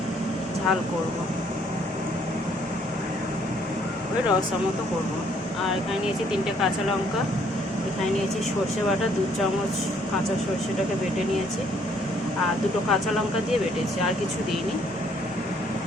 ঝাল করব, ওই রসা মতো করবো। আর এখানে নিয়েছি 3টে কাঁচা লঙ্কা, এখানে নিয়েছি সর্ষে বাটা 2 চামচ, কাঁচা সর্ষেটাকে বেটে নিয়েছি, আর 2টো কাঁচা লঙ্কা দিয়ে বেটেছি, আর কিছু দিইনি।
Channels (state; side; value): normal; both; correlation 0.65